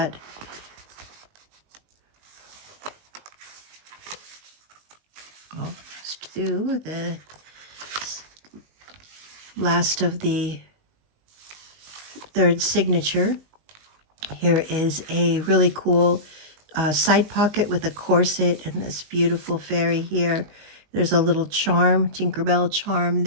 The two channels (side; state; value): left; late; 19 ms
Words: Let's do the last of the third signature. Here is a really cool side pocket with a corset and this beautiful fairy here. There's a little charm, Tinkerbell charm